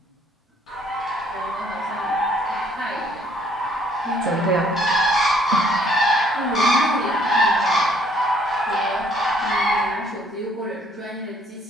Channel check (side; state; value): both; normal; correlation 0.63